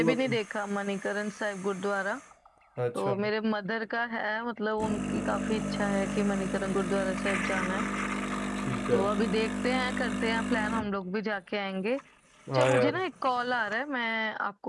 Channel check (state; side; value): identical; both; correlation 1.00